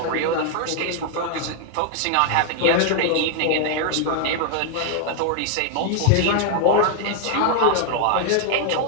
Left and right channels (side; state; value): both; different; correlation 0.00